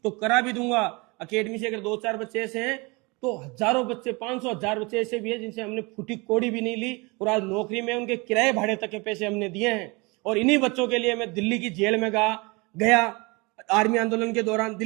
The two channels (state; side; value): quieter; left; 26.9 dB